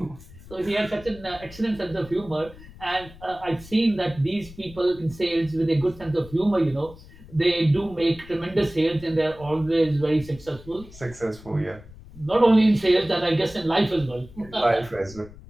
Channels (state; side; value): noise; left; rumble, 19 dB below the sound